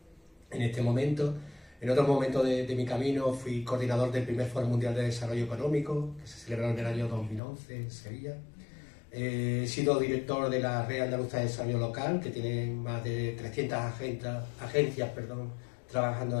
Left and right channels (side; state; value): right; drops out; at 7.4 s